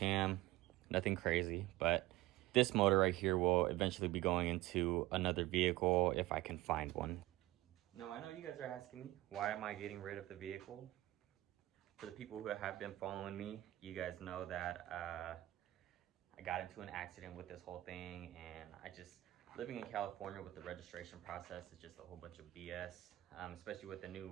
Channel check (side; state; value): left; quieter; 17.2 dB